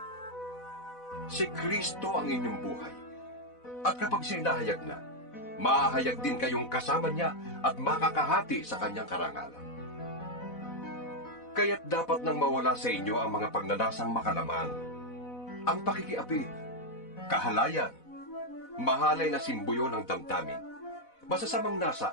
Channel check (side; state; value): right; late; 4.1 ms